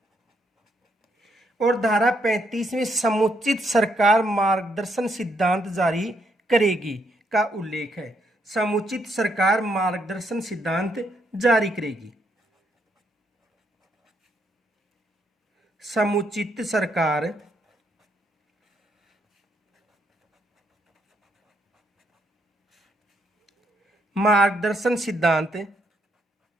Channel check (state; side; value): normal; both; correlation 0.75